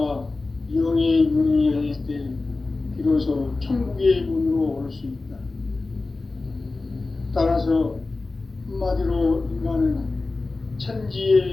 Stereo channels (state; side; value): quieter; right; 3.5 dB